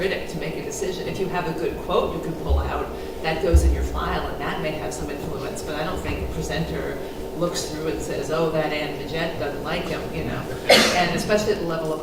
to make a decision. If you have a good quote you can pull out, that goes in your file, and that may have some influence, but I don't think a presenter looks through and says, oh, that Ann Midgette doesn't like him, you know. And especially at the level of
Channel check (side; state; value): both; identical; correlation 1.00